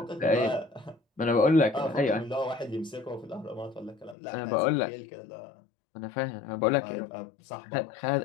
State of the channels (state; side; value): drops out; right; at 4.2 s